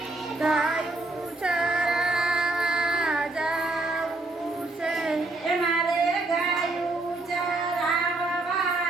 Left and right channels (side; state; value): left; quieter; 3.0 dB